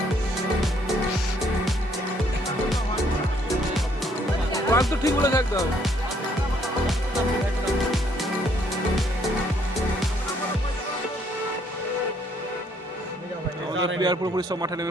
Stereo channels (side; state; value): both; normal; correlation 0.67